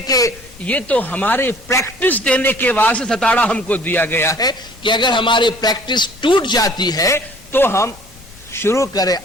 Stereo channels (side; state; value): left; noise; rumble, 23 dB below the sound